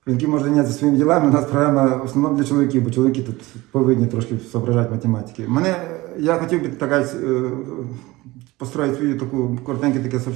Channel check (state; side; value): quieter; left; 20.2 dB